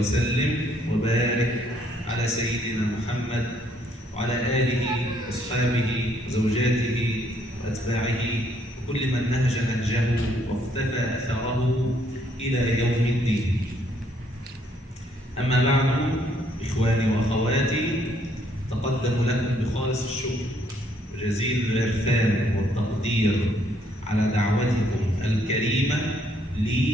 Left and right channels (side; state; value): both; normal; correlation 0.68